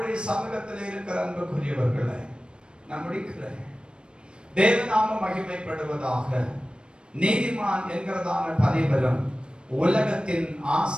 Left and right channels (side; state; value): left; late; 0.054 ms